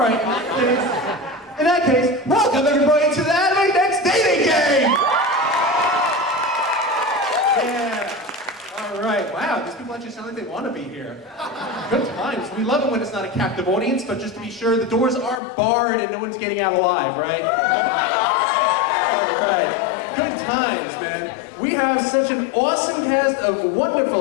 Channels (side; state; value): right; drops out; at 15.4 s